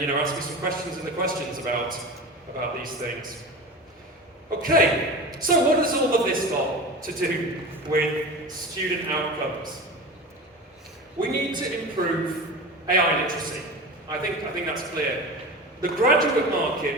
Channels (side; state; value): both; normal; correlation 0.31